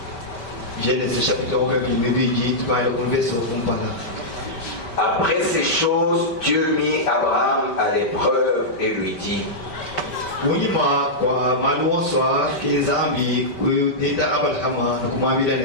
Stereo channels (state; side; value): late; right; 5.1 ms